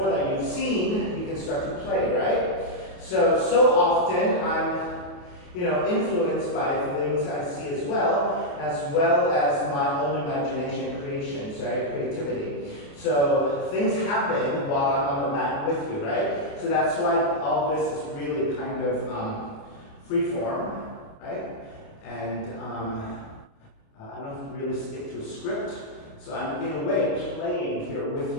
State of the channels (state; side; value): late; right; 28 ms